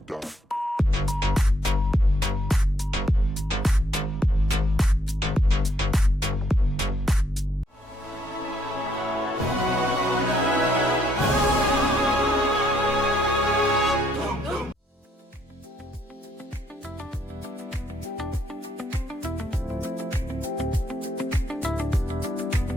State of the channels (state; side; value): normal; both; correlation 0.71